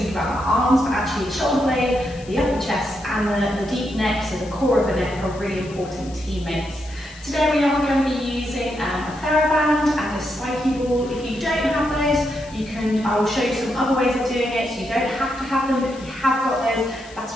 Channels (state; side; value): noise; left; hiss, 21 dB below the sound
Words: about our arms, but actually the shoulder blade, the upper chest, and the deep neck, so the core of the neck, are really important teammates. Today we are going to be using a TheraBand and a spiky ball. If you don't have those, I will show you some other ways of doing it, so you don't have to have them, but if you have got those, that's